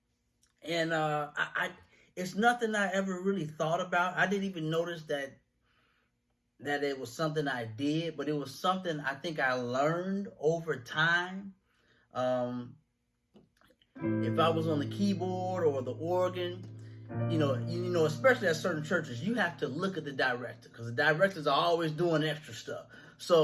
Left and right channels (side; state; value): both; identical; correlation 1.00